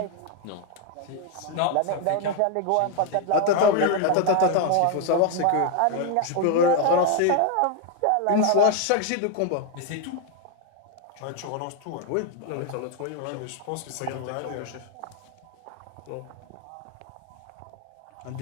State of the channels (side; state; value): both; different; correlation 0.01